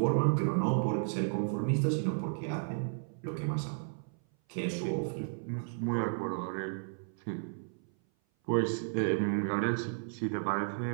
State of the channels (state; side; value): silent; left; 56 dB below the other